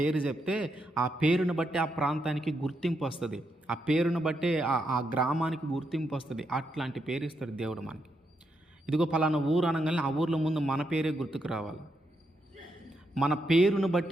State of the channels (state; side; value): normal; both; correlation 0.81